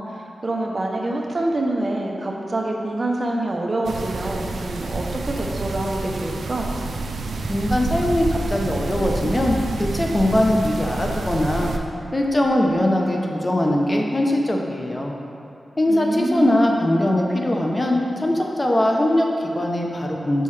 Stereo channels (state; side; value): normal; both; correlation 0.93